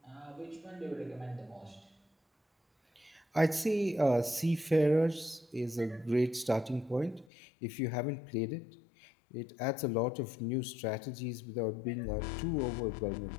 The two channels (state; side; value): drops out; right; at 7.3 s